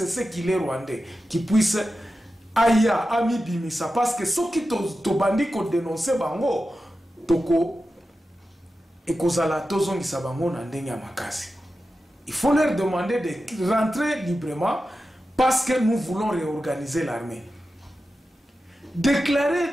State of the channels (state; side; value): normal; both; correlation 0.92